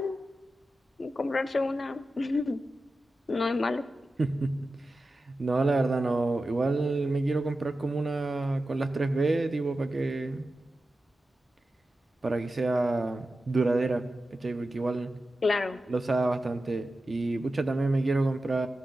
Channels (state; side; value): normal; both; correlation 0.93